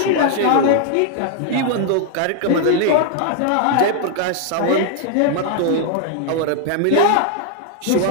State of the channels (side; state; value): both; different; correlation 0.00